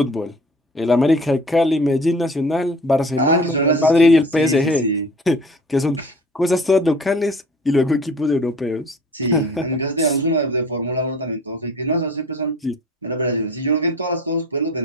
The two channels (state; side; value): normal; both; correlation 0.45